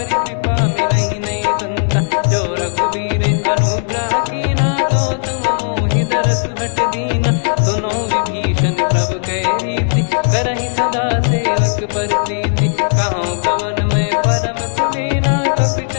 कृपा मिलहि नहीं संता। जो रघुबीर अनुग्रह कीना तो तुम मोहि दरसु हट दीना। सुनो विभीषण प्रभु कह रीति करहि सदा सेवक पर प्रीति। कहूँ कवन में परम कुलीना कपि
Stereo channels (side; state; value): right; silent; digital silence